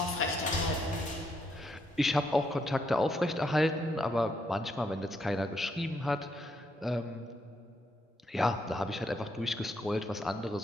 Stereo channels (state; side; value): normal; both; correlation 0.76